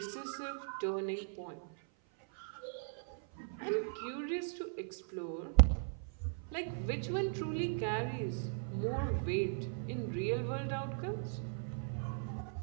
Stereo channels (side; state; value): left; silent; 52 dB below the other